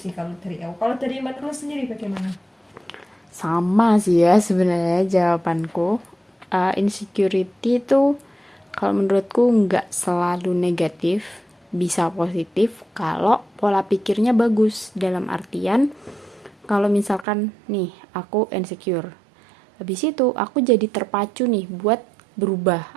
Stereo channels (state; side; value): drops out; left; at 17.2 s